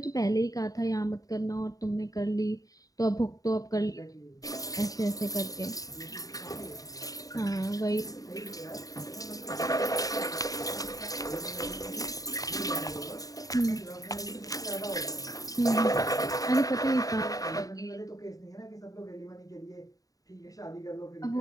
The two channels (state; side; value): late; right; 0.17 ms